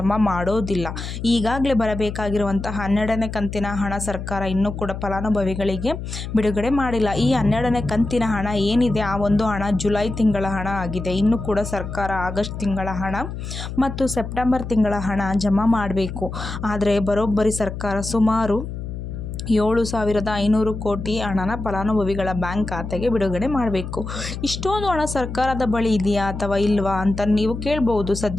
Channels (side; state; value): left; noise; hum, 7 dB below the sound